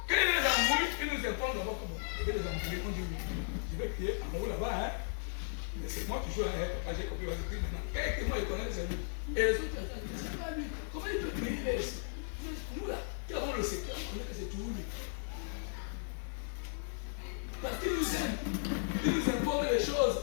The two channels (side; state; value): right; silent; digital silence